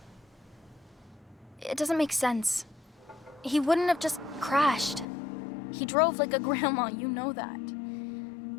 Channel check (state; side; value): drops out; right; at 5.1 s